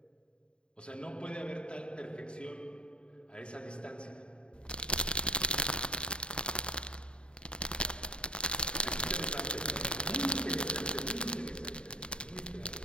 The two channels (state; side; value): late; right; 0.053 ms